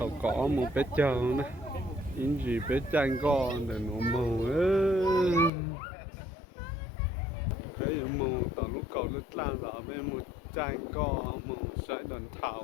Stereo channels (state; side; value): drops out; right; at 5.5 s